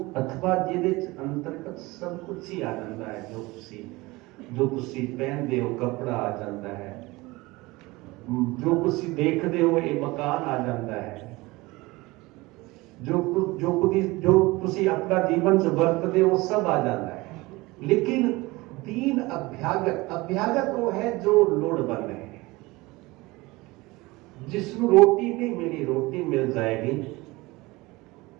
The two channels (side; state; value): left; quieter; 21.8 dB